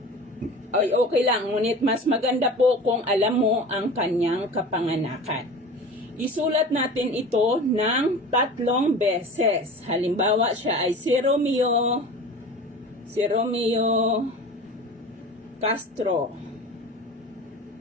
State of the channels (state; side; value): normal; both; correlation 0.36